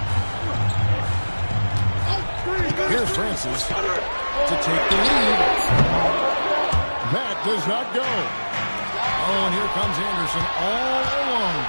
Here's Francis to take the lead. That does not go. Oh, and here comes Anderson all alone.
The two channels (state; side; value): inverted; both; correlation -1.00